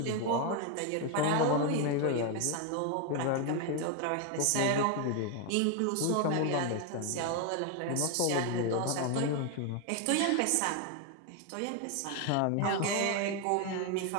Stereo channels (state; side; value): different; both; correlation 0.01